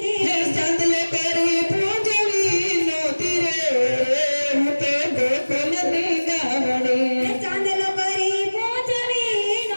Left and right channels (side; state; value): both; inverted; correlation -1.00